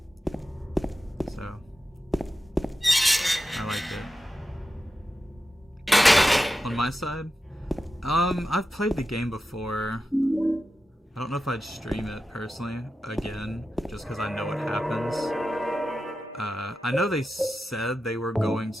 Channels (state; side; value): normal; both; correlation 0.91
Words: So I liked it. On my side, I've played the game before. I don't know if I'd stream it personally again, just because I know what happens. I know they said they were going